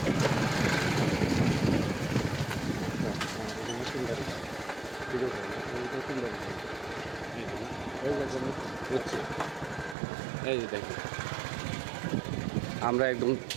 এই যে দেখুন, আমরা একদম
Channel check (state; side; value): drops out; left; at 10.0 s